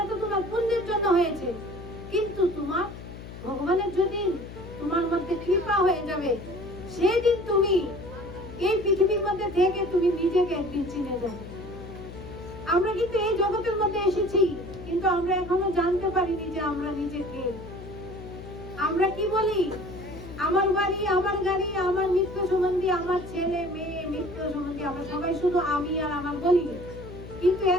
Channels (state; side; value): noise; left; hum, 13 dB below the sound